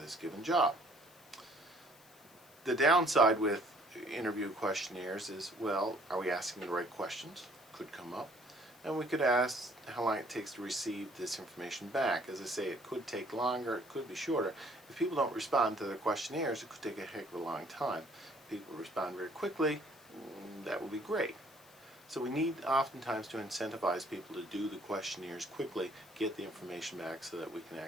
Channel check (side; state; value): left; noise; hiss, 25 dB below the sound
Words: given job. The downside with interview questionnaires is, well, are we asking the right questions? Could come up. And we could ask how long it takes to receive this information back. As I say, it could take longer, it could be shorter. If people don't respond to their questionnaires, it could take a heck of a long time. If people respond very quickly, that would be great. So we need oftentimes to incentivize people to do the questionnaires quickly, get the information back so that we can